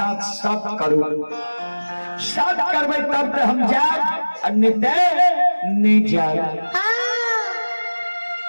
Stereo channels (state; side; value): inverted; both; correlation -1.00